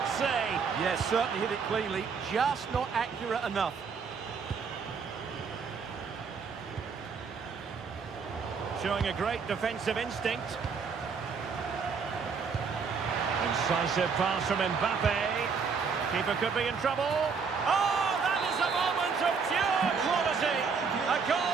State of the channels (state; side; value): quieter; left; 5.6 dB